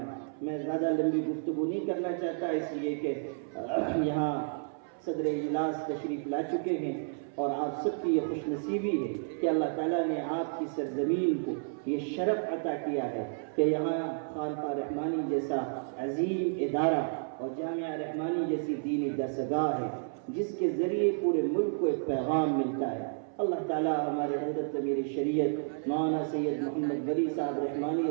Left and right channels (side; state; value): left; silent; 57 dB below the other